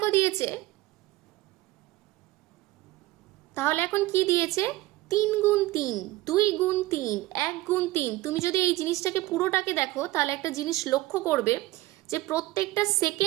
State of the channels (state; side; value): quieter; left; 18.0 dB